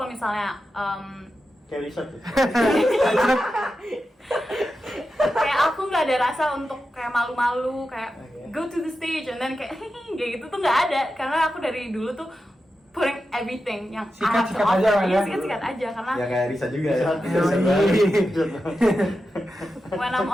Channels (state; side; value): normal; both; correlation 0.90